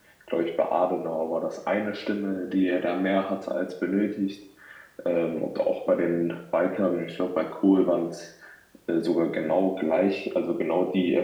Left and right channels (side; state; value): both; identical; correlation 1.00